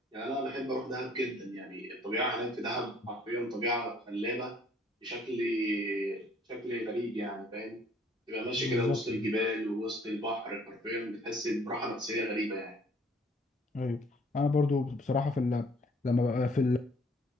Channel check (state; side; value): normal; both; correlation 0.60